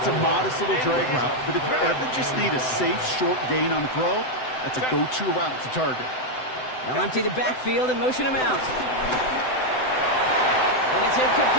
a modest little drag route, but if you ever just need a safe, short gain on the throw, that's a go-to route to target. They'll empty the backfield and motion him out. And it's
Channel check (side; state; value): right; late; 7.9 ms